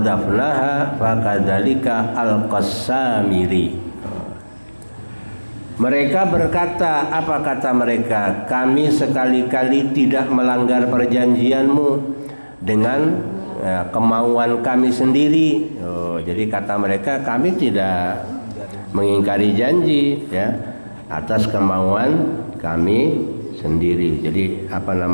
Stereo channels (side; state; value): both; inverted; correlation -1.00